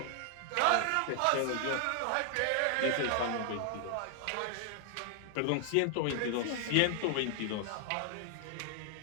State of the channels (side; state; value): both; different; correlation 0.00